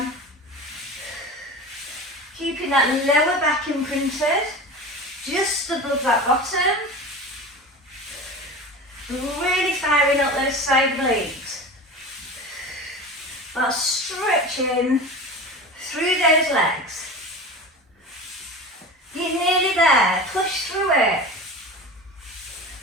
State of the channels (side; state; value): both; normal; correlation 0.31